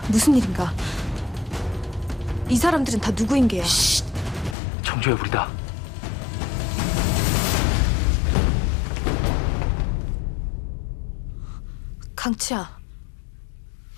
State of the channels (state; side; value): drops out; right; at 4.5 s